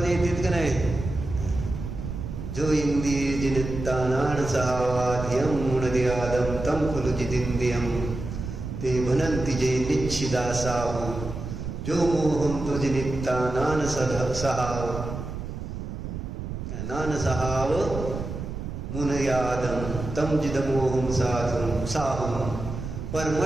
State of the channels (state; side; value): noise; right; rumble, 7 dB below the sound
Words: येतात का नाही? जो इंद्रिय जिनित्तानान सहावाध्यम मुनदियादम तम खुलु जितिंद्रियम ते भनंति जे निच्छिदा साहु जो मोहम तो जिनित्तानान सहाव मुनयादम तम जिदमोहम साधुम साहुम